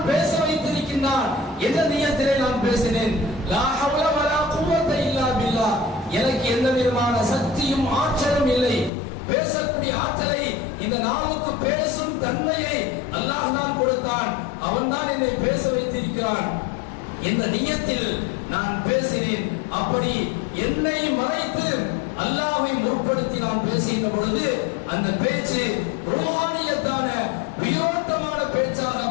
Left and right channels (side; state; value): right; drops out; at 8.9 s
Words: பேச வைத்திருக்கின்றான் என்ற நியத்திலே நான் பேசினேன். லா ஹவ்ல வலா குவத்த இல்லா பில்லாஹ், எனக்கு எந்த விதமான சக்தியும் ஆற்றலும் இல்லை. பேசக்கூடிய ஆற்றலை, இந்த நாவுக்கு பேசும் தன்மையை அல்லாஹ் தான் கொடுத்தான், அவன் தான் என்னை பேச வைத்திருக்கிறான் என்ற நியத்தில் நான் பேசினேன். அப்படி என்னை மறைத்து அல்லாஹ்வை முற்படுத்தி நான் பேசுகின்ற பொழுது அந்த பேச்சு ரூஹானியத்தான உயிரோட்டமான பேச்சாக